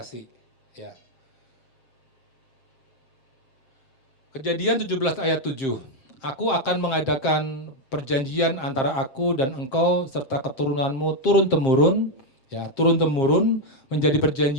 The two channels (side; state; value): right; late; 7.5 ms